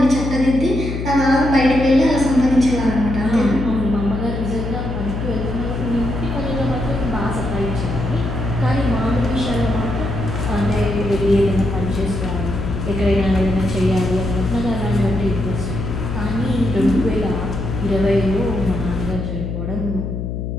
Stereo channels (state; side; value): noise; left; hum, 4 dB below the sound